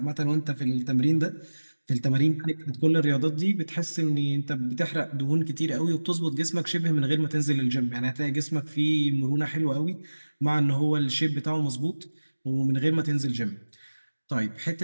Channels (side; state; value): both; inverted; correlation -1.00